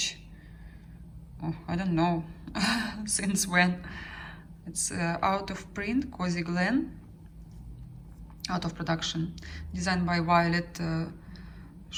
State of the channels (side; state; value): both; identical; correlation 1.00